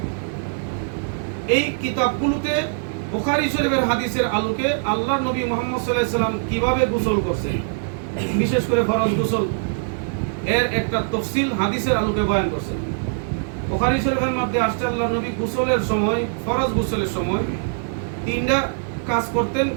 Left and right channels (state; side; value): silent; left; digital silence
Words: এই কিতাবগুলোতে বুখারী শরীফের হাদিসের আলোকে আল্লাহর নবী মুহাম্মদ সাল্লাল্লাহু আলাইহি ওয়াসাল্লাম কিভাবে গোসল করছেন, বিশেষ করে ফরজ গোসল, এর একটা তফসিল হাদিসের আলোকে বয়ান করছেন। বুখারী শরীফের মধ্যে আসছে আল্লাহর নবী গোসলের সময়, ফরজ গোসলের সময় 3টা কাজ করতেন